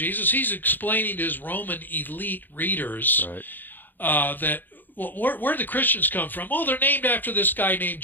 He's explaining to his Roman elite readers Right. that, well, where the Christians come from? Oh, they're named after this guy named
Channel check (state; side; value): late; right; 0.090 ms